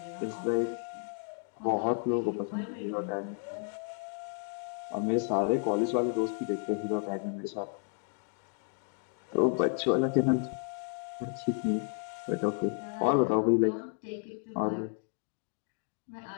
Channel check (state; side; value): silent; right; 56 dB below the other